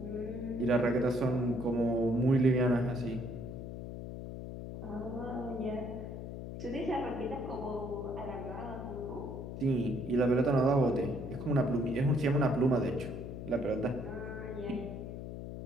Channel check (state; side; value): noise; left; hum, 8 dB below the sound